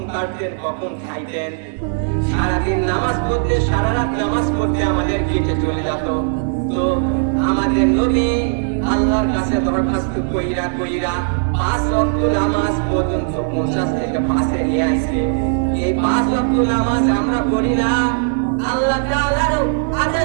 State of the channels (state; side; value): silent; left; digital silence